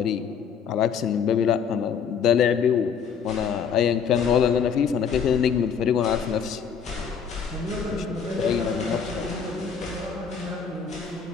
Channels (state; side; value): quieter; right; 6.9 dB